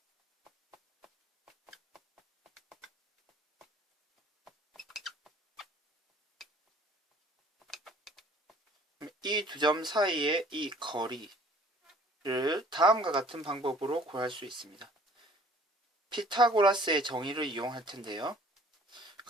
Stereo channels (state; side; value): normal; both; correlation 0.54